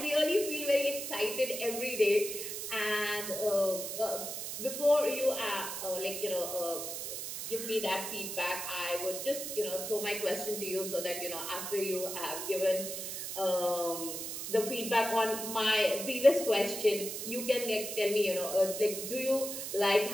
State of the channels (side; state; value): right; noise; hiss, 6 dB below the sound